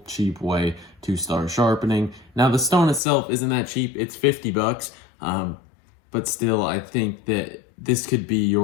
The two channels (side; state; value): right; drops out; at 3.0 s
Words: cheap way to start sharpening. Now, the stone itself isn't that cheap. It's 50 bucks, but still, I think that this could be